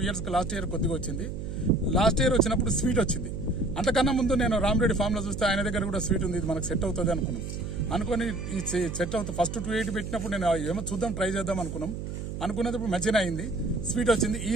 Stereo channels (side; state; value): right; noise; hum, 6 dB below the sound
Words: years లాస్ట్ ఇయర్ కొద్దిగా వచ్చింది. లాస్ట్ ఇయర్ వచ్చినప్పుడు స్వీట్ వచ్చింది. అంతకన్నా ముందు నేను రామరెడ్డి ఫామ్లో చూస్తే ఆయన దగ్గర కూడా స్వీట్ ఉంది, ఇది మనకు సెట్ అవుతుంది అనుకుని ఈ సెట్ అవుతుంది. ఫస్ట్ 280 పెట్టినప్పుడు నేను ఏమో చూద్దాం, ట్రై చేద్దాం అనుకున్నప్పుడు మంచిగా అయింది. స్వీట్ వచ్చింది.